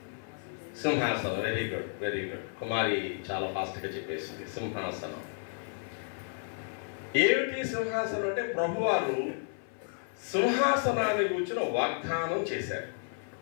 సింహాసనం. Very good, very good. Kumari చాలా ఫాస్ట్గా చెప్పేసింది. సింహాసనం. ఏమిటి సింహాసనం అంటే, ప్రభువారు సింహాసనాన్ని కూర్చుని వాగ్దానం చేశారు.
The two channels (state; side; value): silent; right; 55 dB below the other